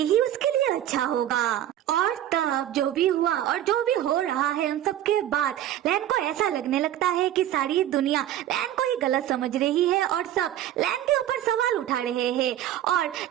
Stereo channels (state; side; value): quieter; left; 12.0 dB